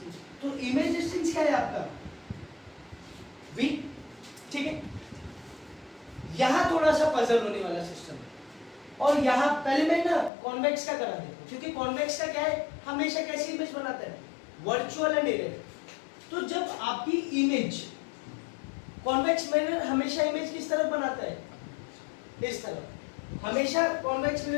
तो इमेज डिस्टेंस क्या है आपका, v। ठीक है, यहां थोड़ा सा पजल होने वाला सिस्टम है, और यहां पहले मैं ना कॉन्वेक्स का करा देता हूं, क्योंकि कॉन्वेक्स का क्या है, हमेशा कैसी इमेज बनाता है, वर्चुअल एंड इरेक्ट। तो जब आपकी इमेज, कॉन्वेक्स मिरर हमेशा इमेज किस तरफ बनाता है, इस तरफ। हमेशा कॉन्वेक्स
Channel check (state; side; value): drops out; right; at 10.3 s